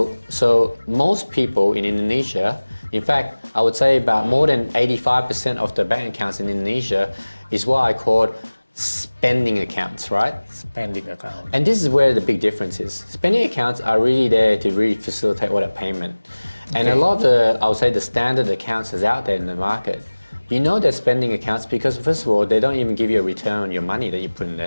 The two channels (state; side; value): inverted; both; correlation -1.00